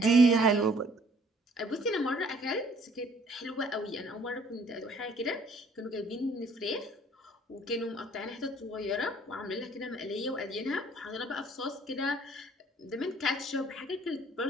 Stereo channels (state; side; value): normal; both; correlation 0.58